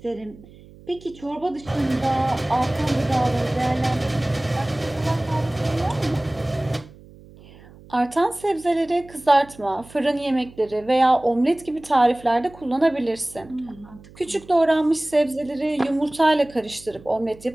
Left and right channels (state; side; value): noise; right; hum, 22 dB below the sound